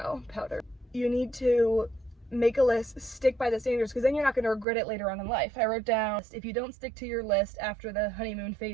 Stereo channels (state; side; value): drops out; left; at 4.7 s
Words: powder. You need to make a list, stick by the standards, because then you're not going to regret it later on in life. I wrote down, if you don't stick to your list after the honeymoon